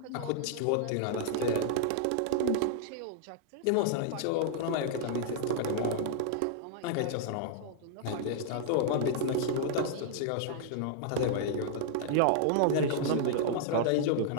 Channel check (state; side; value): different; both; correlation -0.01